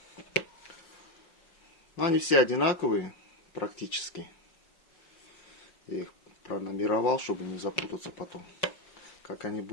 Но они все одинаковые практически. Я их пронумеровал, чтобы не запутаться потом. Как они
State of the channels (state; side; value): late; right; 5.4 ms